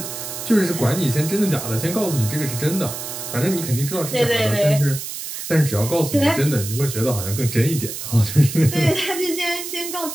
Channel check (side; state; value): right; noise; hiss, 8 dB below the sound